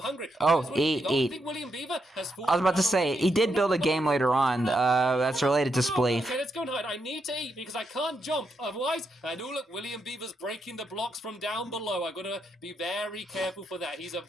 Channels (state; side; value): normal; both; correlation 0.81